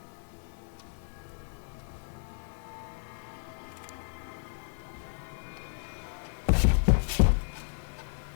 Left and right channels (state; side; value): silent; right; digital silence